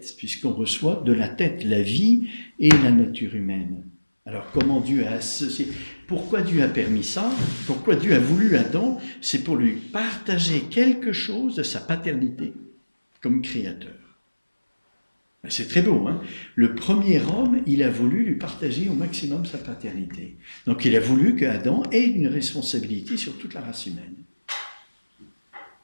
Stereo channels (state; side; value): inverted; both; correlation -1.00